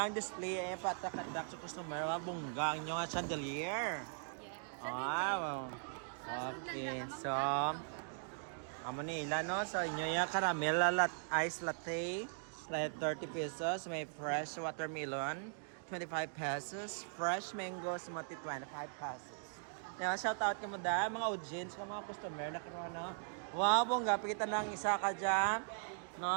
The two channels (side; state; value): left; silent; digital silence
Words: display patakadak sa customer bungga ang inyong chandelier. Wow. Okay. So amo nila no so inyo ya caramel ice latte 30 pesos, may fresh watermelon 25 pesos, fresh mango smoothie 25 pesos. Now, shout out mo da mga audience ka mga customer na karon no. Wow, bongga pakita lang isa ka diyan.